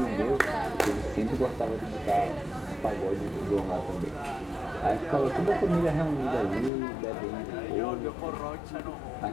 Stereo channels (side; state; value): right; drops out; at 6.7 s